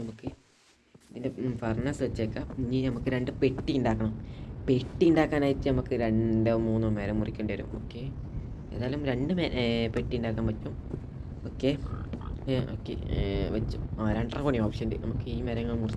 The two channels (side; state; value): both; identical; correlation 1.00